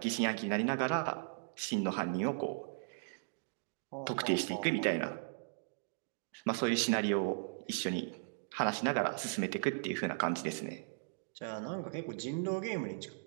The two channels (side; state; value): left; silent; digital silence